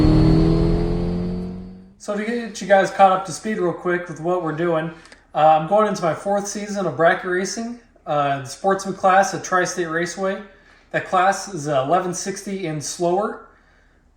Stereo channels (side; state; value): both; identical; correlation 1.00